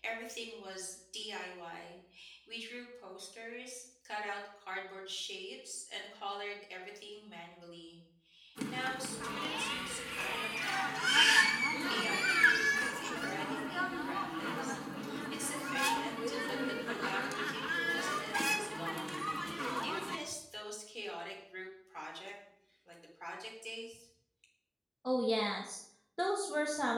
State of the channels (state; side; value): identical; both; correlation 1.00